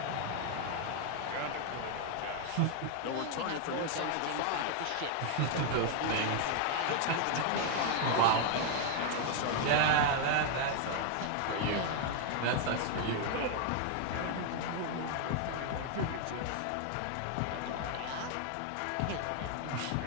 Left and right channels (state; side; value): different; both; correlation 0.00